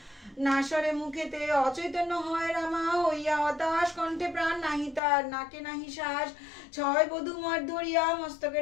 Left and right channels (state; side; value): drops out; right; at 5.0 s